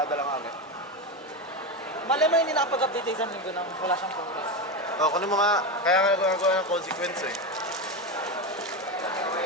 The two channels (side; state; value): both; normal; correlation 0.16